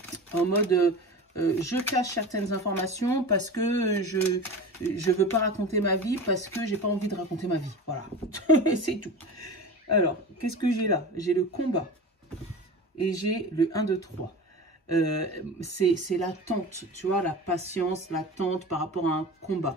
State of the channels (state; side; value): normal; both; correlation 0.31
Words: en mode... je cache certaines informations parce que je veux pas raconter ma vie, parce que j'ai pas envie de raconter ma vie. Voilà, c'est tout. Alors, qu'est-ce que j'ai là? J'ai le combat et j'ai le 1, 2, 3. C'est l'attente, tu vois, la patience, l'attente par rapport à un